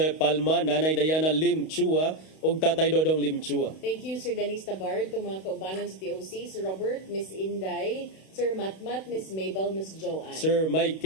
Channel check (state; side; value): late; right; 32 ms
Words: Palma, Nanay Diana Limchua ug Tatay Dodong Limchua. Thank you Sir Dennis Tabard, itong mga kaubanan sa TOC, Sir Robert, Miss Inday, Sir Matmat, Miss Mabel, Miss Joanne. Sir